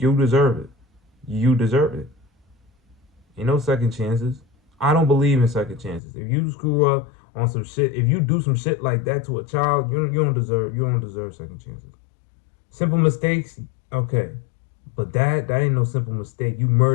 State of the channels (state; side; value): drops out; right; at 6.0 s